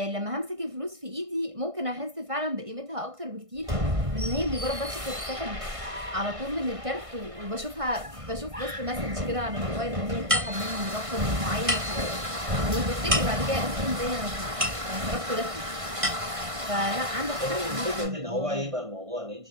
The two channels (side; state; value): left; late; 1.5 ms